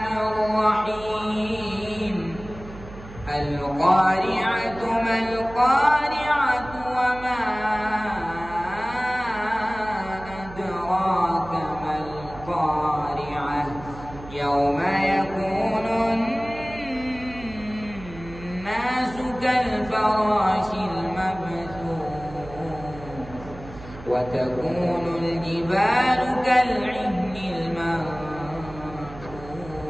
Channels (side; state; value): right; noise; hum, 15 dB below the sound